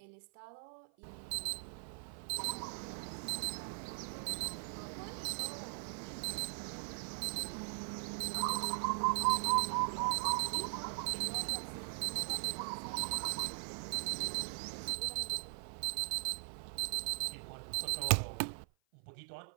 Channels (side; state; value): left; silent; 51 dB below the other